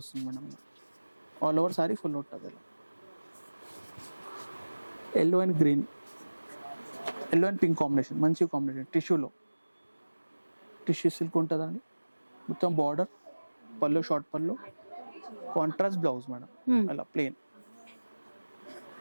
madam. All over sari full ఉంటుంది ఇలా. Yellow and green, yellow and pink combination, మంచి కాంబినేషన్. టిష్యూలో, టిష్యూ సిల్క్ ఉంటుందండి. మొత్తం బార్డర్, పళ్ళు, షార్ట్ పళ్ళు, కాంట్రాస్ట్ బ్లౌజ్ మేడం. అలా ప్లెయిన్.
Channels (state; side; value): inverted; both; correlation -1.00